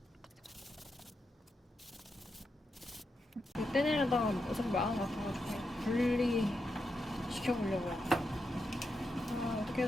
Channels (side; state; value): both; normal; correlation 0.85